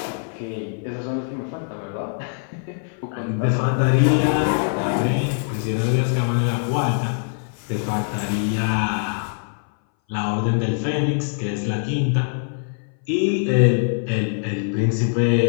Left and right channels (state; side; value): silent; right; 60 dB below the other